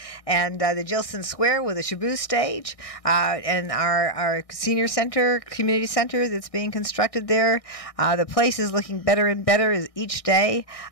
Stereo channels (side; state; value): right; late; 1.6 ms